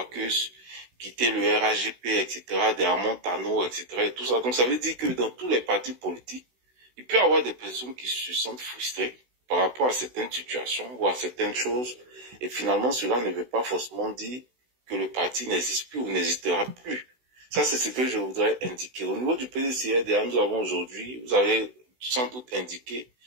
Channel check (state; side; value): late; left; 16 ms